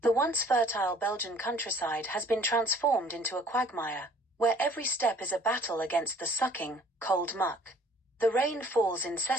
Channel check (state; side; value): normal; both; correlation 0.55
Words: The once fertile Belgian countryside has been transformed into a quagmire, where every step is a battle against the sucking, cold muck. The rain falls